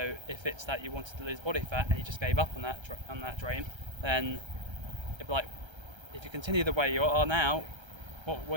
if it's that you wanted to lose body fat and you just gave up on that dream, then it'd be like, if you continue the way you are now, what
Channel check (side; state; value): left; late; 1.3 ms